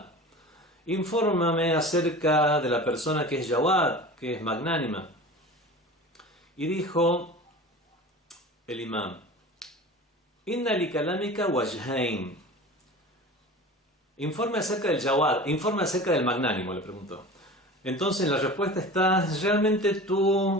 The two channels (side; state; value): both; normal; correlation 0.36